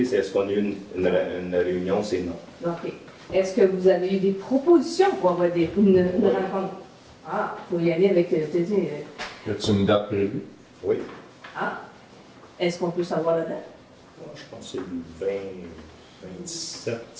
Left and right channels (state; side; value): identical; both; correlation 1.00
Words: c'est est-ce qu'on a eu une réunion? C'est non. OK. Est-ce que vous avez eu des propositions pour avoir une rencontre? Ah, il faut y aller avec... Y a-t-il une date prévue? Oui. Ah. Est-ce qu'on peut savoir la date? Je pense que c'est le 27